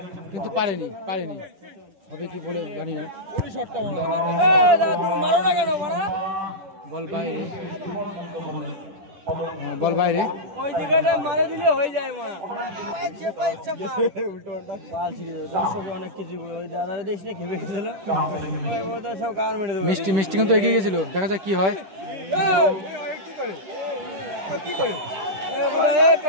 কিন্তু পারেনি। হবে কি বলে জানি না। বল বাইরে, বল বাইরে। ওই জায়গাটা মারা দিলে হয়ে যায় মা। অনেক কিছু ওই দাদারা দেশ নিয়ে খেপে গেছিল, সব কার মেরে দেবে। মিষ্টি কিন্তু এগিয়ে গেছিল, দেখা যাক কি হয়।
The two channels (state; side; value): late; left; 10 ms